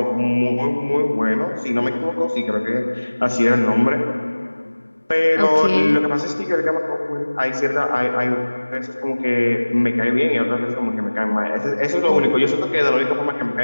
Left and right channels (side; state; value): both; inverted; correlation -1.00